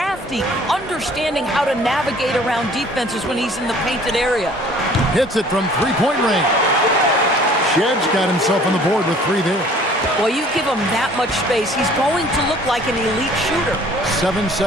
understanding how to navigate around defenses when he's in the painted area. Hits it from three-point range. Shed's got himself on the board with 3 there. Well, you give him that much space, he's going to look like an elite shooter.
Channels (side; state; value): both; normal; correlation 0.53